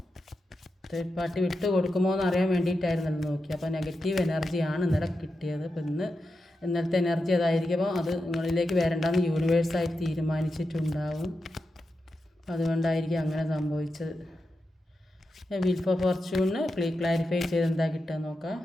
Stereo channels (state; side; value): normal; both; correlation 0.89